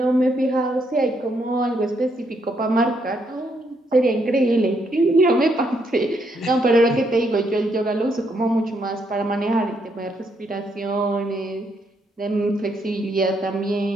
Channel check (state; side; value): normal; both; correlation 0.75